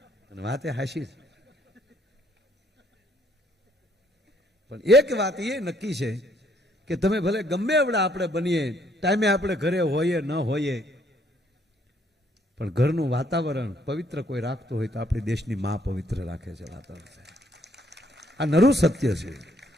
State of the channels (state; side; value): normal; both; correlation 0.67